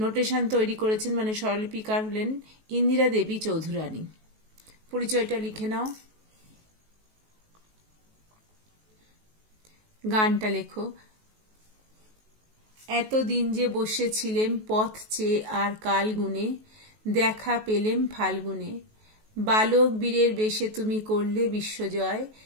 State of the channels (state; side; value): late; left; 19 ms